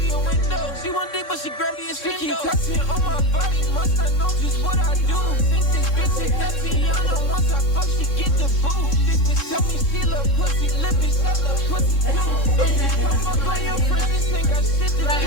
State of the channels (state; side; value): late; right; 3.6 ms